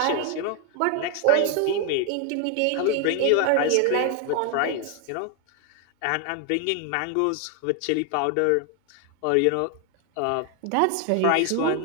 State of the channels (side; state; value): both; different; correlation 0.01